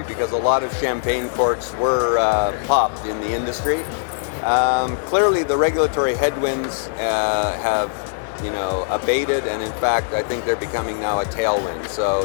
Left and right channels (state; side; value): silent; right; digital silence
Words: because a lot of champagne corks were popped in the industry. Clearly, the regulatory headwinds have abated, and in fact, I think they're becoming now a tailwind. So